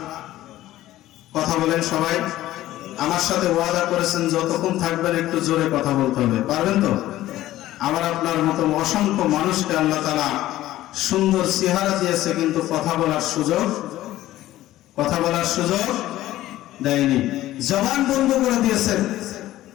কথা বলেন সবাই, আমার সাথে ওয়াদা করেছেন যতক্ষণ থাকবেন একটু জোরে কথা বলতে হবে, পারবেন তো? আমার আপনার মতো অসংখ্য মানুষকে আল্লাহ তাআলা সুন্দর চেহারা দিয়েছে, কিন্তু কথা বলার সুযোগ দেয়নি। জবান বন্ধ করে দিয়েছেন,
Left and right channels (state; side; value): quieter; right; 15.0 dB